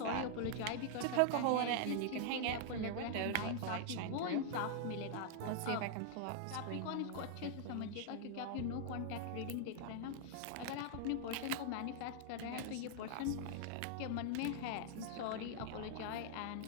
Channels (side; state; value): both; different; correlation -0.01